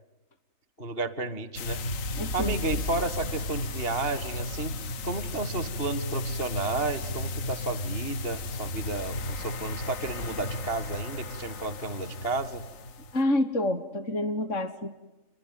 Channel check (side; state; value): right; late; 3.8 ms